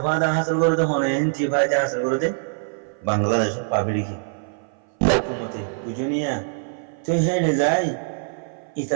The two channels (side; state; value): left; silent; 58 dB below the other